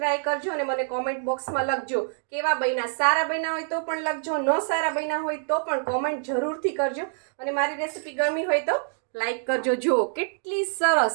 કરજો અને મને કોમેન્ટ બોક્સમાં લખજો કેવા બન્યા। સારા બન્યા હોય તો પણ લખજો, ન સારા બન્યા હોય તો પણ કોમેન્ટ જરૂરથી કરજો, અને મારી રેસીપી ગમી હોય તો લાઈક કરજો। જો કેટલી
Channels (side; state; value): left; silent; digital silence